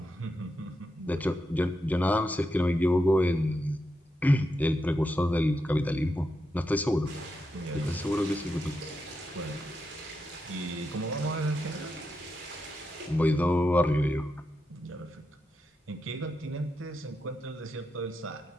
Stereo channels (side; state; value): both; normal; correlation 0.86